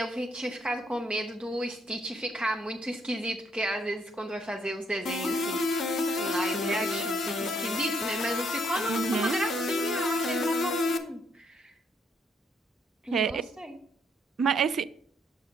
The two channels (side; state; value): both; normal; correlation 0.71